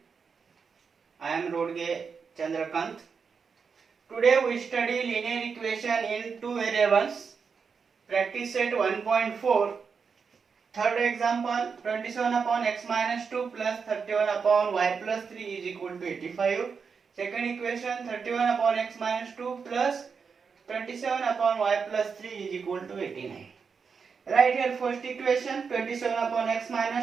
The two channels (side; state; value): left; quieter; 5.7 dB